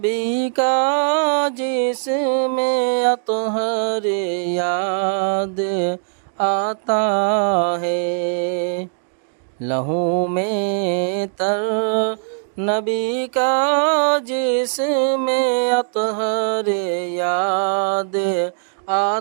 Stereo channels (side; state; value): left; silent; digital silence